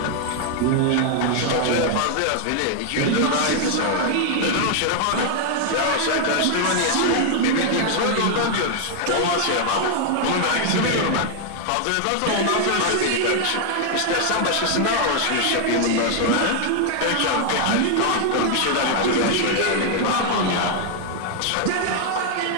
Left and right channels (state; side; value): different; both; correlation 0.00